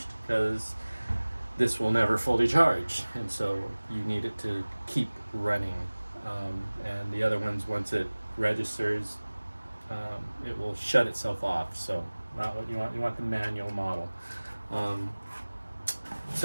because this will never fully charge, and so you need it to keep running. And the other ones, once it registers, it will shut itself off. So not what you want. You want the manual model.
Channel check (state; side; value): inverted; both; correlation -1.00